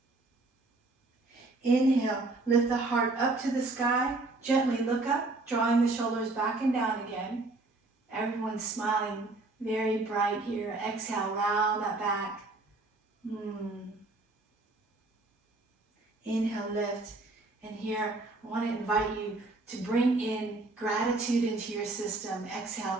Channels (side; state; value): left; quieter; 3.2 dB